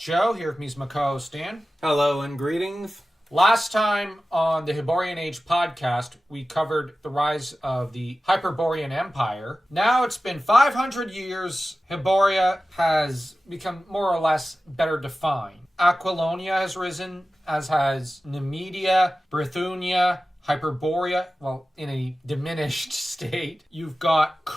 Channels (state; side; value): normal; both; correlation 0.95